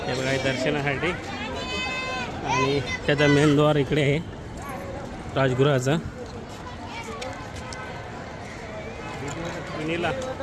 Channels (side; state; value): both; identical; correlation 1.00